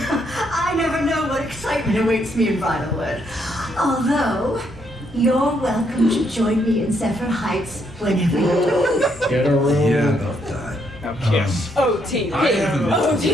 never know what excitement awaits me in Bridalwood. Although, you're welcome to join me in Zephyr Heights whenever you like. Get a room. Yeah, about that. Now kiss. OTP. I haven't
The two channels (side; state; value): both; normal; correlation 0.74